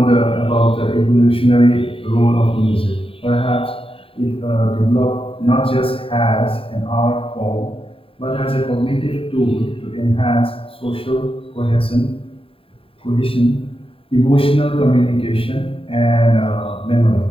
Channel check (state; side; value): late; right; 0.27 ms